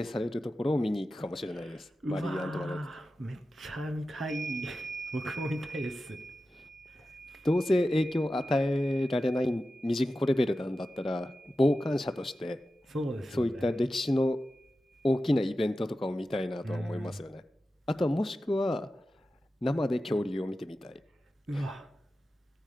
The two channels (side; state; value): both; normal; correlation 0.93